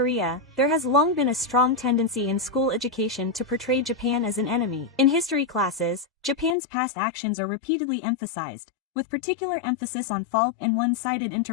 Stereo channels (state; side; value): drops out; right; at 6.6 s